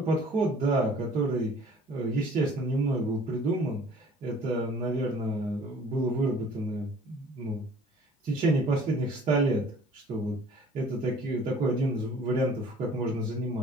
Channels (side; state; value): both; normal; correlation 0.52